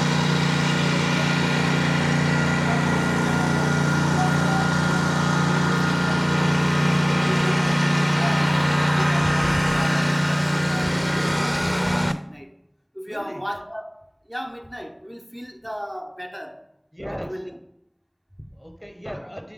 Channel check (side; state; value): both; identical; correlation 1.00